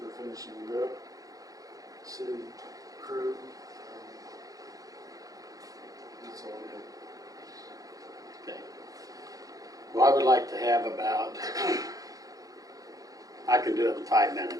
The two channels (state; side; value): late; left; 0.17 ms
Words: finishing it up. City crew. That's all I have. Okay. Well, I would like to have about, I can do it in 5